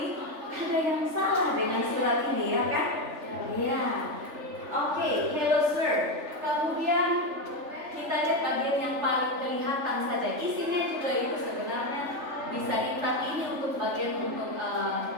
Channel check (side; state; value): left; late; 3.4 ms